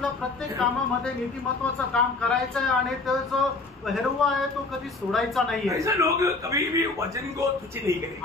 प्रत्येक कामामध्ये नीतिमत्वाचं काम करायचं आहे आणि तो जो हेरवा आहे तो कधी सोडायचा नाहीये. ऐसे लोग कभी भी वचन को तुच्छ नहीं करेंगे.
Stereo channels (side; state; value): right; quieter; 3.6 dB